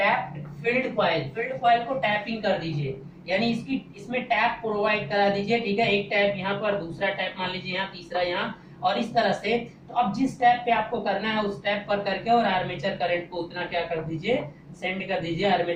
field coil. Field coil को टैपिंग कर दीजिए, यानी इसमें टैप प्रोवाइड करा दीजिए, ठीक है। एक टैप यहाँ पर, दूसरा टैप मान लीजिए यहाँ, तीसरा यहाँ, और इस तरह से। तो अब जिस टैप पे आपको करना है उस टैप पर करके और आर्मेचर करंट को उतना क्या कर दीजिए, सेंड कर दीजिए।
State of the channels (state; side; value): identical; both; correlation 1.00